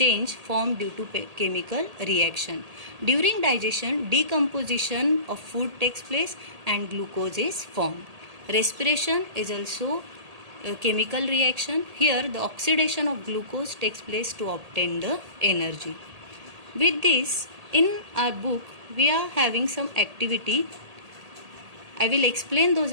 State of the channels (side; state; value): left; late; 1.8 ms